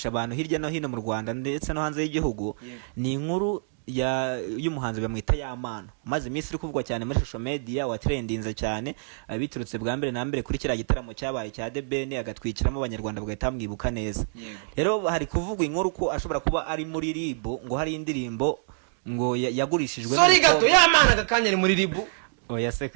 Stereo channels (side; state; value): left; silent; 60 dB below the other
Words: abantu hirya no hino mu Rwanda ndetse no hanze y'igihugu ni inkuru y'umuhanzi bamwita Yamano maze iminsi iri kuvugwa cyane muri social media wa trendinze cyane biturutse bwa mbere na mbere kuri kira gitaramo cyabaye cya The Ben agatwikiramo abanyarwanda bagahita mwibuka neza rero hari kuvugwa inkuru ko ashobora kuba ari muri RIB ngo hari indirimbo ngo yagurishijwe sorry gato Yamano agakanya ari muri RIB oya se